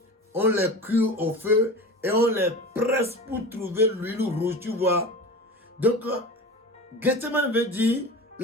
on les cuit au feu et on les presse pour trouver l'huile rouge, tu vois. Donc, Gethsemane veut dire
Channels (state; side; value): normal; both; correlation 0.32